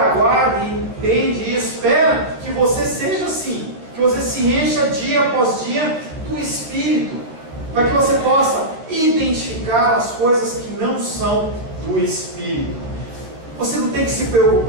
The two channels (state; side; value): late; left; 13 ms